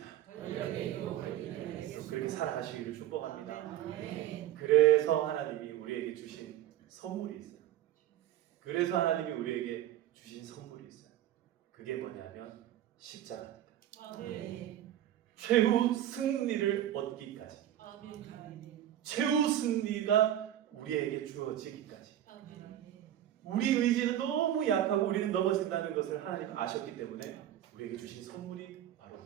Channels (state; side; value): quieter; left; 12.0 dB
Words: 그렇게 살아가시기를 축복합니다. 그래서 하나님이 우리에게 주신 선물이 있어요. 그래서 하나님이 우리에게 주신 선물이 있어요. 그게 뭐냐면 십자가입니다. 최후 승리를 얻기까지, 최후 승리가 우리에게 주어지기까지. 우리 의지는 너무 약하고 우리는 넘어진다는 것을 하나님 아셨기 때문에 우리에게 주신 선물이 바로